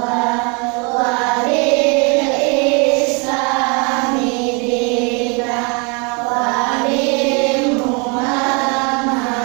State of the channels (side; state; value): left; quieter; 32.6 dB